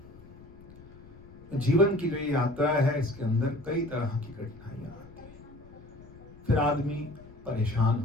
जीवन की जो ये यात्रा है, इसके अंदर कई तरह की कठिनाइयां आती हैं। फिर आदमी परेशान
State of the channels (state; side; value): noise; left; rumble, 20 dB below the sound